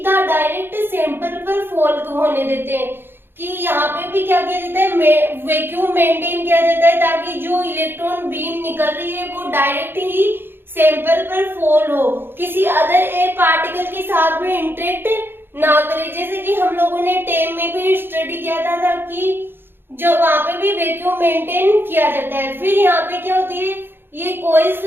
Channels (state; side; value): late; left; 0.10 ms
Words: डायरेक्ट सैंपल पर फॉल होने देते हैं। कि यहाँ पे भी क्या किया जाता है, वैक्यूम मेंटेन किया जाता है ताकि जो इलेक्ट्रॉन बीम निकल रही है वो डायरेक्ट ही सैंपल पर फॉल हो, किसी अदर एयर पार्टिकल के साथ में इंटरेक्ट ना करे। जैसे कि हम लोगों ने टेम में भी स्टडी किया था कि जो वहां पे भी वैक्यूम मेंटेन किया जाता है। फिर यहाँ पे क्या होती है, ये कॉइल्स